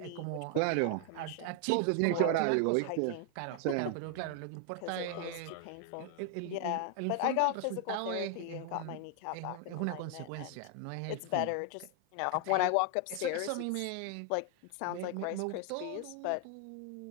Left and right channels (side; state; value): both; different; correlation 0.00